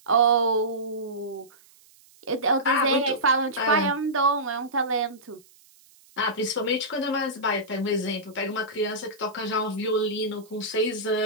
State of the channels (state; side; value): noise; right; hiss, 28 dB below the sound